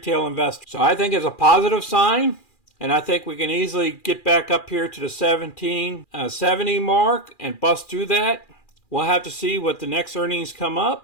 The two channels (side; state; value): right; late; 2.4 ms